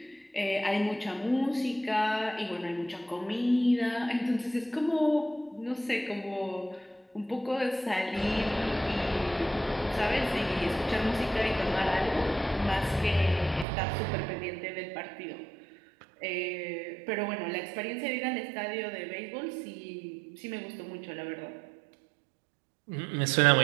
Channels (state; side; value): drops out; left; at 13.7 s